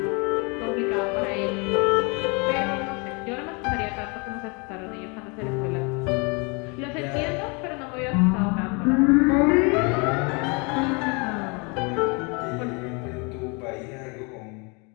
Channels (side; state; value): right; quieter; 31.5 dB